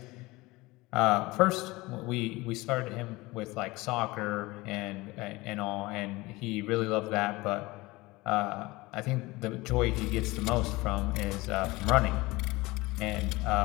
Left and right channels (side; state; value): right; quieter; 21.5 dB